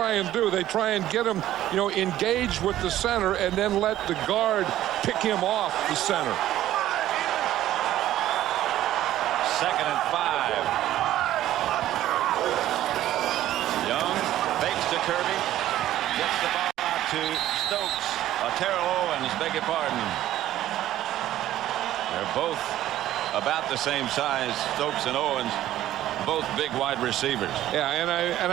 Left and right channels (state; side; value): quieter; left; 13.4 dB